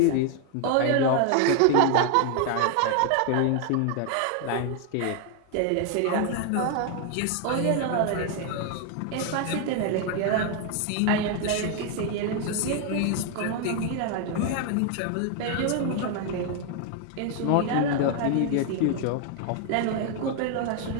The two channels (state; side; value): different; both; correlation 0.00